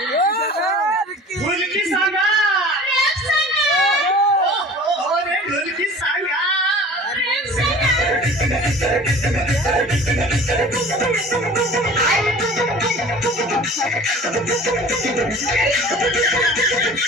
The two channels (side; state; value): both; normal; correlation 0.42